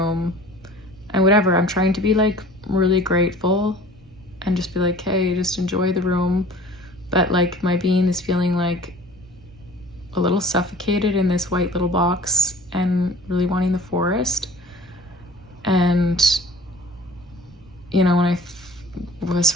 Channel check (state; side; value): normal; both; correlation 0.46